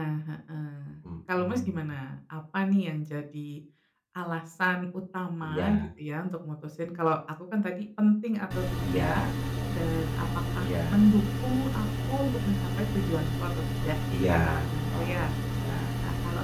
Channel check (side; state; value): both; identical; correlation 1.00